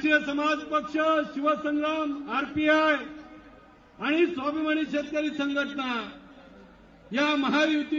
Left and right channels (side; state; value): both; identical; correlation 1.00